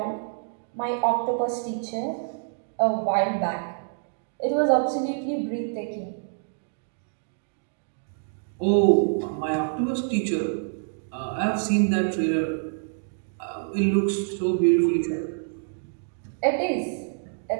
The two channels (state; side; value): silent; left; digital silence